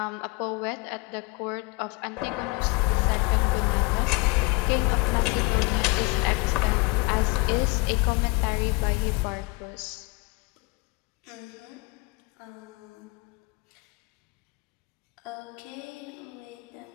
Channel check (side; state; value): right; quieter; 25.1 dB